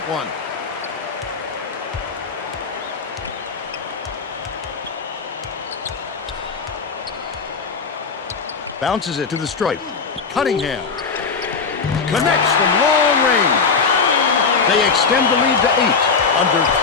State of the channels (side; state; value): right; quieter; 5.1 dB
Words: one. Bounces it to the stripe. Cunningham connects from long range. They extend the lead to 8. Under